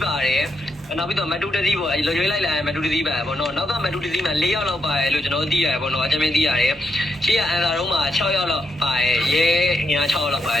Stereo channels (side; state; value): both; normal; correlation 0.82